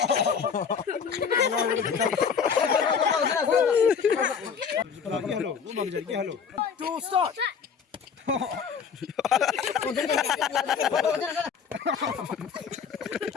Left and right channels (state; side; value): quieter; right; 6.6 dB